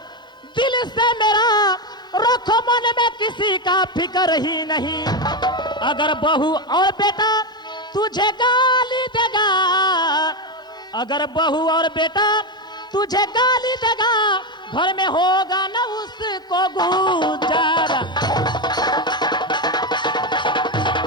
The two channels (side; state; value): both; normal; correlation 0.11